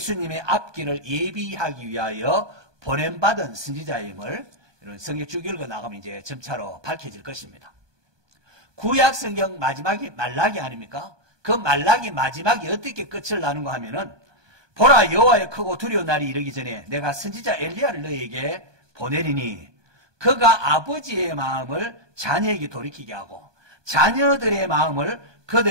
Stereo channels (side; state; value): left; late; 1.2 ms